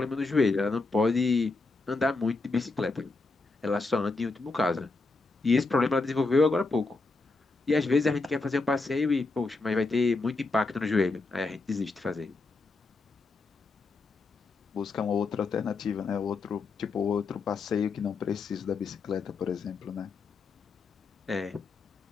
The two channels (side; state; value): right; quieter; 3.7 dB